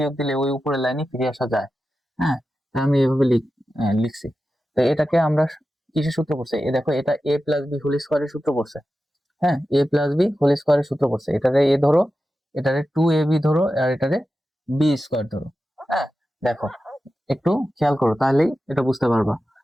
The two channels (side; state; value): both; normal; correlation 0.92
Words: দিলে ওই উপরের লাইনে ফিরে আসা যায়। হ্যাঁ, তা আমি এভাবে লিখছি। তো এটাকে আমরা কিসের সূত্র পড়ছে? এ দেখো, এটা a প্লাস বি হোল স্কোয়ারের সূত্র পড়ছে। হ্যাঁ, a প্লাস বি হোল স্কোয়ারের সূত্র পড়ছে। এটারে a ধরো, এটারে 2ab ধরো, আর এটারে বি স্কোয়ার ধরো। হ্যাঁ, দেখো একটু খেয়াল করো, তাহলেই এটা বুঝতে পারবা।